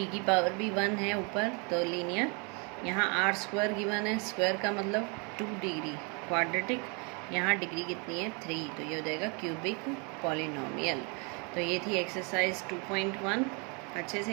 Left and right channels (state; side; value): quieter; left; 33.4 dB